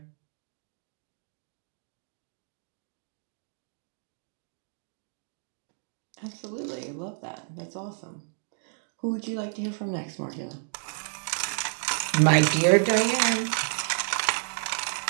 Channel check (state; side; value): silent; left; digital silence